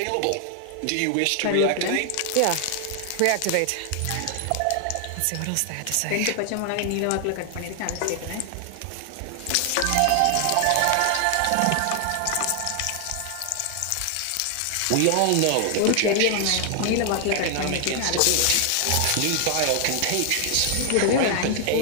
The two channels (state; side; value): different; both; correlation 0.00